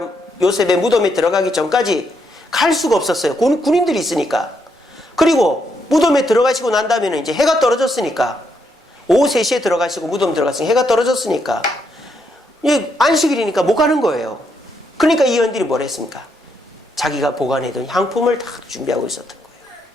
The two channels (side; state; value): both; normal; correlation 0.77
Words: 요셉의 무덤에 들어가기 전까지 갈 수가 없었어요. 군인들이 있으니까. 그리고 무덤에 들어가시고 난 다음에는 이제 해가 떨어졌으니까, 오후 3시에 들어가시고 무덤 들어갔으니 해가 떨어졌으니까 안식일이니까 못 가는 거예요. 그러니까 이 여인들이 뭘 했습니까? 자기가 보관해둔 향품을 다 준비하고 있었던 거예요.